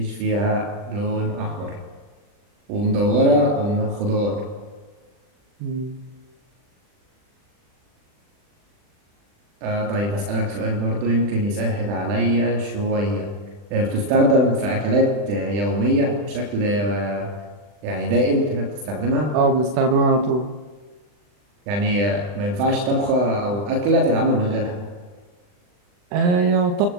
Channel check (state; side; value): late; left; 40 ms